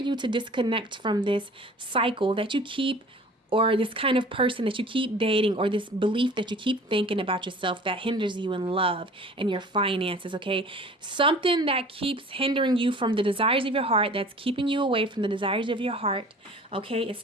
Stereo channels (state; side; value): normal; both; correlation 0.46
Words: to disconnect from this cycle that you keep, or this kind of person that you keep dating, or this belief that you keep thinking about yourself that hinders you in love and your finances, okay? Something that keeps hindering you from the desires of your heart, that's keeping you away from the desires of your heart, okay? It's